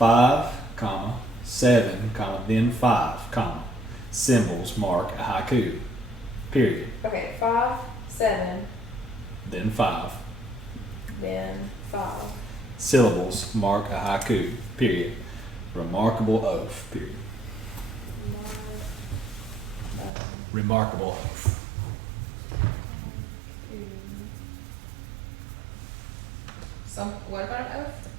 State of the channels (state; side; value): drops out; left; at 20.1 s